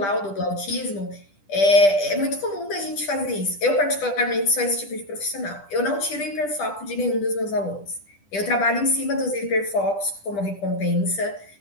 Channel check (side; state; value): right; late; 10 ms